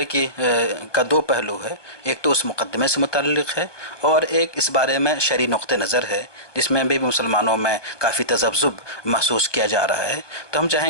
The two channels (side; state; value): right; late; 1.2 ms